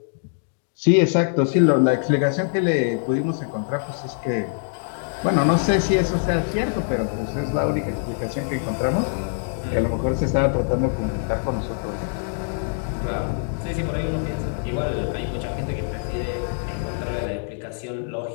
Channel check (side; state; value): right; silent; digital silence